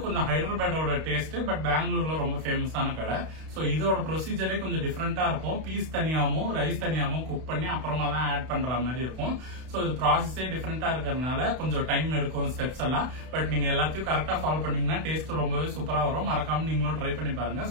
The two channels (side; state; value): left; late; 32 ms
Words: கொஞ்சம் ஹைதராபாடோட டேஸ்ட், பட் பெங்களூர்ல ரொம்ப ஃபேமஸான கடை. ஸோ இதோட ப்ரொசீஜரே கொஞ்சம் டிஃப்ரெண்டா இருக்கும். பீஸ் தனியாவும் ரைஸ் தனியாவும் குக் பண்ணி அப்புறமா தான் ஆட் பண்ற மாதிரி இருக்கும். ஸோ இது ப்ராசஸே டிஃப்ரெண்டா இருக்கிறதுனால கொஞ்சம் டைம் எடுக்கும் ஸ்டெப்ஸ் எல்லாம். பட் நீங்க எல்லாத்தையும் கரெக்டா ஃபாலோ பண்ணீங்கன்னா டேஸ்ட் ரொம்பவே சூப்பரா வரும். மறக்காம நீங்களும் ட்ரை பண்ணி பாருங்க.